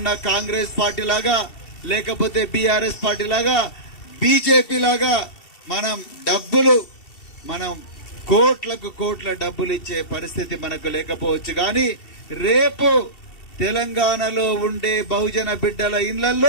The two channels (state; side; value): late; right; 2.7 ms